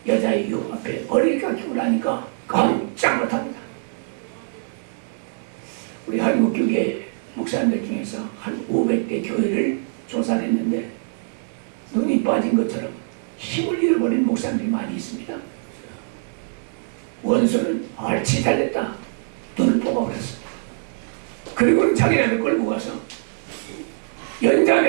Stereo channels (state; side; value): silent; left; digital silence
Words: 여자의 유혹 앞에 머리를 깎이고 나니까 깜짝 못합니다. 우리 한국 교계 목사님들 중에서 한 500대 교회를 조사를 했는데 눈이 빠진 것처럼 힘을 잃어버린 목사님들이 많이 있습니다. 원수는 알치 달렸다. 눈을 뽑아버렸습니다. 그리고는 자기네를 끌고 가서